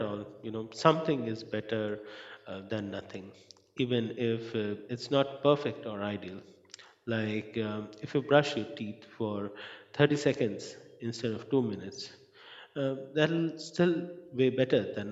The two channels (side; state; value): both; identical; correlation 1.00